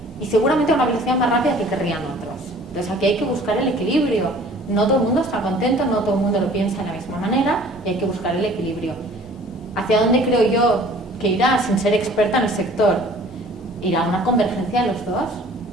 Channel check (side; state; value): both; normal; correlation 0.50